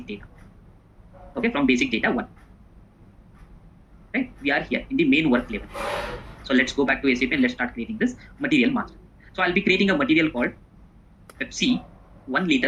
data. Okay, from basic data 1. Right, we are here in the main work level. So let's go back to SAP and let's start creating this material master. So I'll be creating a material called Pepsi 1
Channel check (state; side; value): identical; both; correlation 1.00